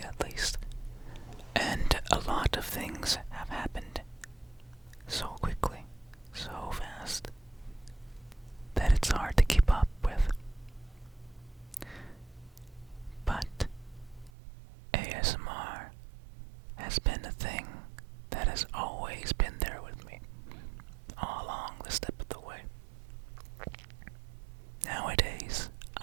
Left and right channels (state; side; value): drops out; left; at 14.3 s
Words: at least. And a lot of things have happened so quickly, so fast, that it's hard to keep up with. But ASMR has been a thing that has always been there with me, all along the step of the way. Nowadays,